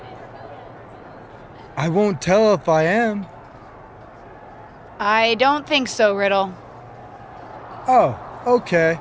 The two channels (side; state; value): both; identical; correlation 1.00